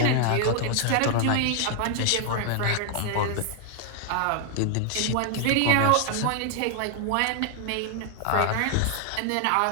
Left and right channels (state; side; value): different; both; correlation 0.00